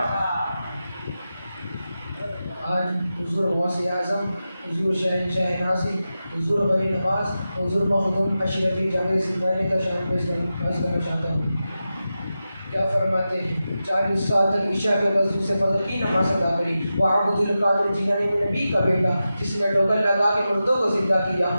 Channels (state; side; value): inverted; both; correlation -0.92